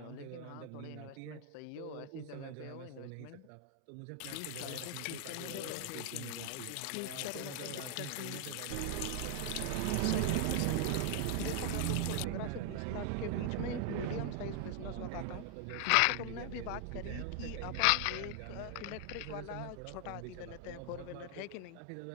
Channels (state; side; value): different; both; correlation 0.00